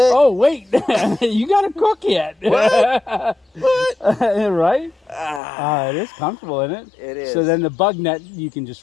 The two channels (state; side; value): drops out; right; at 5.4 s